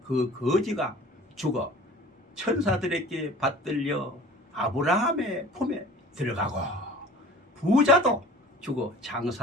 그 거지가 죽어 천사들에게 받들려 아브라함의 품에 들어가고 부자도 죽어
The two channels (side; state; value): both; normal; correlation 0.44